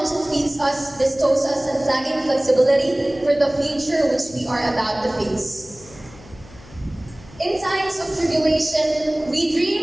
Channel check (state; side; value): noise; left; hum, 21 dB below the sound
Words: it feeds us bestows us unflagging flexibility for the future which we are about to face. In times of tribulation, we